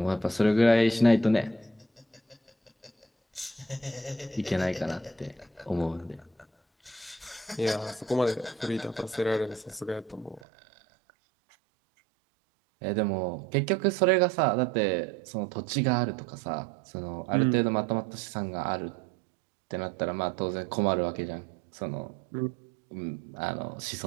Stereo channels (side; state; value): left; drops out; at 10.4 s